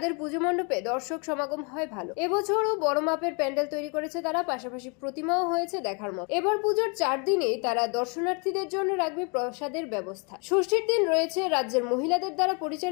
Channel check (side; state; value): right; quieter; 34.4 dB